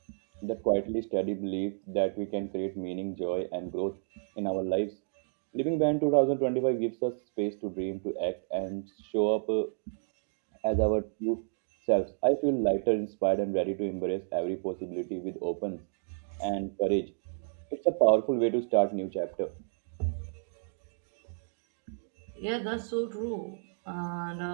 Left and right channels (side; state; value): left; silent; digital silence